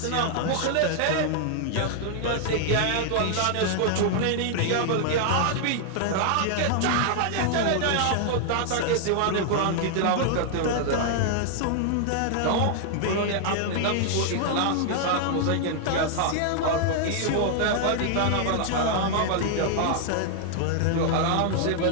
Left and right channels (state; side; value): different; both; correlation 0.00